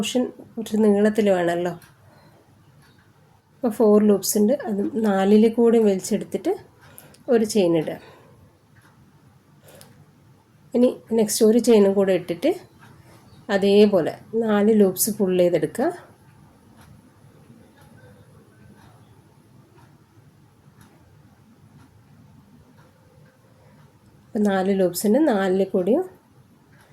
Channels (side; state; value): both; identical; correlation 1.00